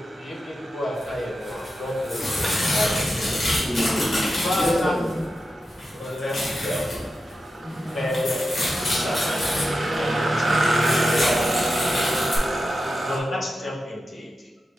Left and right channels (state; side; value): normal; both; correlation 0.90